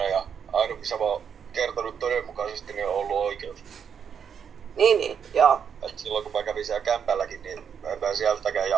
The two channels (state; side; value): quieter; left; 7.5 dB